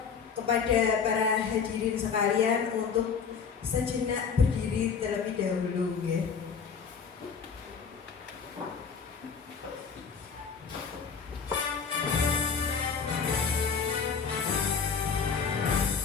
kepada para hadirin sekalian untuk sejenak berdiri terlebih dahulu, ya.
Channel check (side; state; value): right; quieter; 6.0 dB